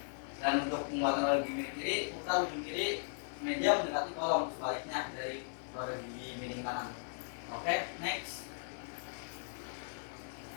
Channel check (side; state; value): right; silent; digital silence